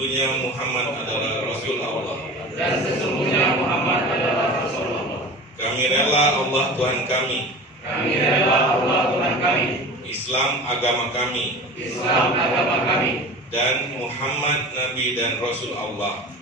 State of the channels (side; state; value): both; normal; correlation 0.36